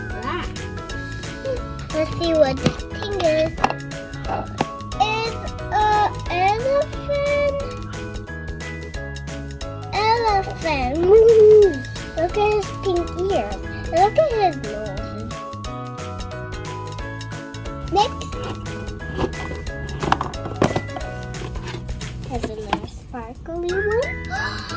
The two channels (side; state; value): both; identical; correlation 1.00